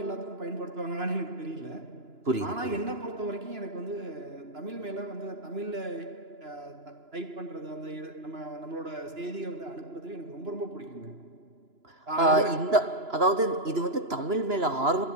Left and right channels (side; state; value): left; late; 2.9 ms